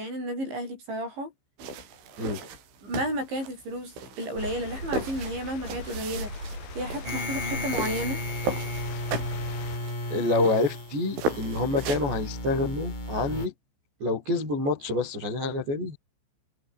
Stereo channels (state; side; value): late; left; 15 ms